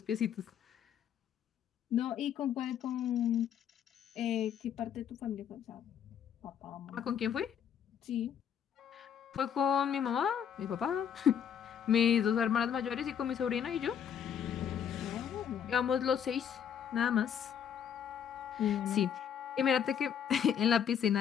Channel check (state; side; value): quieter; right; 8.4 dB